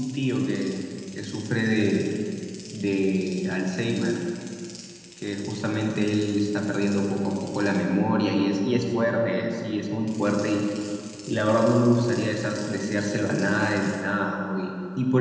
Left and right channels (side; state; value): both; identical; correlation 1.00